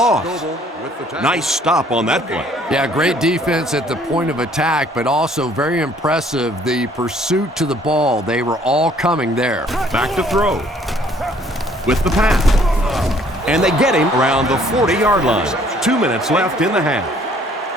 Nice stop on that play. Yeah, great defense at the point of attack, but also very impressive, the pursuit to the ball. They were all coming there. Back to throw. With the pass. And they get him around the 40-yard line. 2 minutes left in the half.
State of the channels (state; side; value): normal; both; correlation 0.60